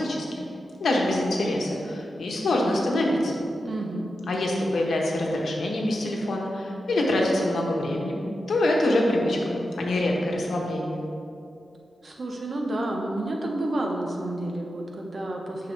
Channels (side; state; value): both; normal; correlation 0.89